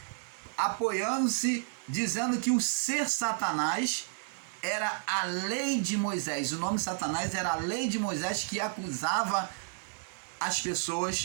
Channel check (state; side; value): silent; left; 57 dB below the other